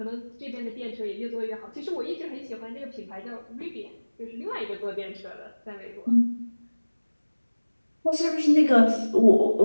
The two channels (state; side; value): inverted; both; correlation -1.00